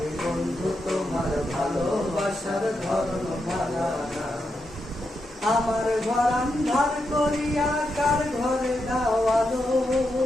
বন্ধু তোমার ভালোবাসার ধর্ম ভাড়া না। আমার ঘর আন্ধার করিয়া কার ঘরে দাওয়ালো,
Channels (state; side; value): normal; both; correlation 0.85